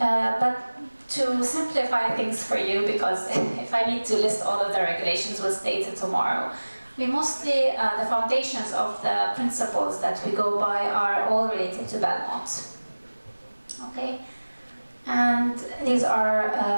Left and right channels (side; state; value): both; inverted; correlation -1.00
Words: to simplify things for you, because if I need to list all of the regulations, we'll stay till tomorrow. We mostly, the foundations of the principles that we go by are all related to Belmont. Okay? And these